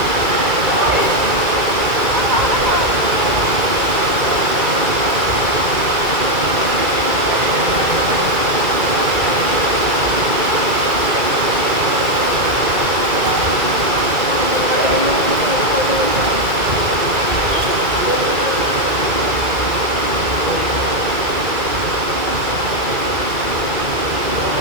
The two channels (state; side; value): late; left; 2.3 ms